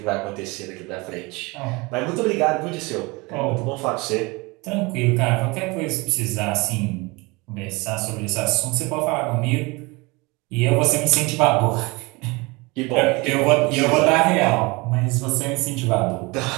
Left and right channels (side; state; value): left; quieter; 25.3 dB